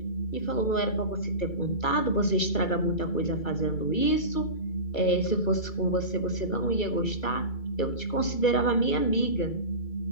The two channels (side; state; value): right; late; 2.3 ms